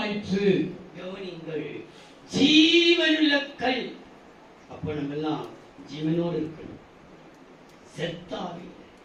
கவனிங்கள், ஜீவனுள்ள கல். அப்ப நம்ம எல்லாம் ஜீவனோடு இருக்கணும். செத்தாவே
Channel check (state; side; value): identical; both; correlation 1.00